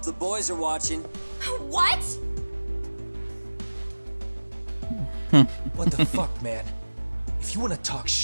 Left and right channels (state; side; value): inverted; both; correlation -1.00